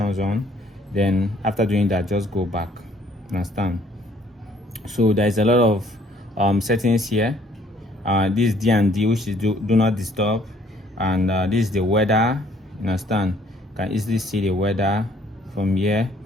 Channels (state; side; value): normal; both; correlation 0.61